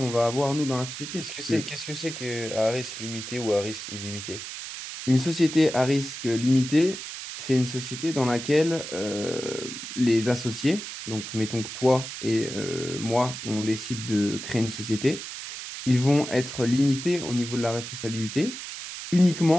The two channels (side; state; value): right; noise; hiss, 9 dB below the sound